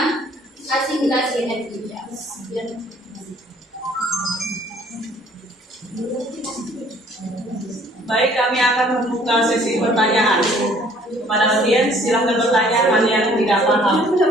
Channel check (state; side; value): normal; both; correlation 0.58